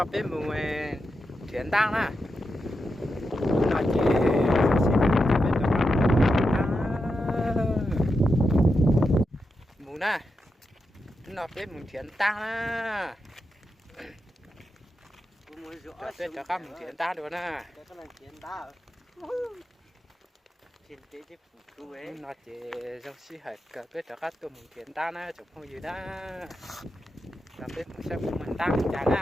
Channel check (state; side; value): normal; both; correlation 0.87